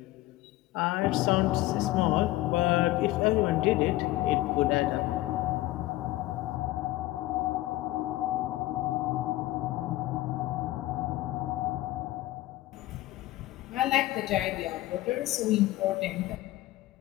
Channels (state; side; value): quieter; right; 17.2 dB